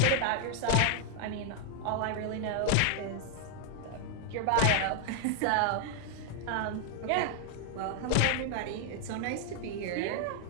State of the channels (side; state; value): both; different; correlation 0.00